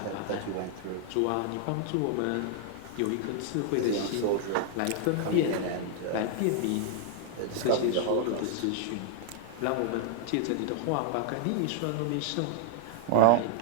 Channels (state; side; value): different; both; correlation 0.00